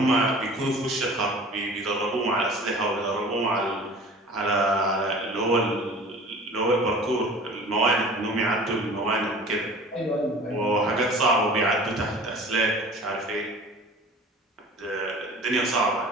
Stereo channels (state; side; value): normal; both; correlation 0.43